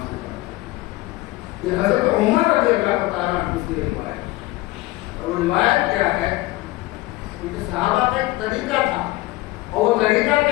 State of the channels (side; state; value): right; quieter; 19.0 dB